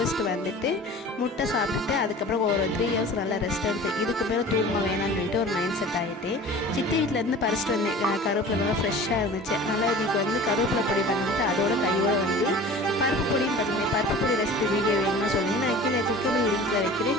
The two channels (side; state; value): both; normal; correlation 0.41